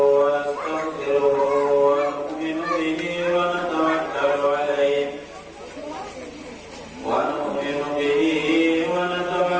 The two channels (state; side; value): identical; both; correlation 1.00